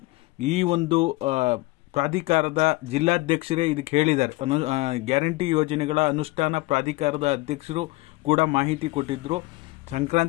ಈ ಒಂದು ಪ್ರಾಧಿಕಾರದ ಜಿಲ್ಲಾಧ್ಯಕ್ಷರೇ ಇದಕ್ಕೆ ಹೇಳಿದ್ದಾರೆ. ಗ್ಯಾರಂಟಿ ಯೋಜನೆಗಳ ಅನುಷ್ಠಾನ ಪ್ರಾಧಿಕಾರದ ಅಧ್ಯಕ್ಷರು ಕೂಡ ಮಾಹಿತಿ ಕೊಟ್ಟಿದ್ದರು,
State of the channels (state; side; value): quieter; right; 22.0 dB